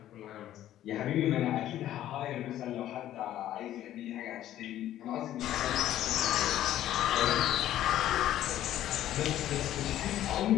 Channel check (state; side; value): quieter; right; 12.6 dB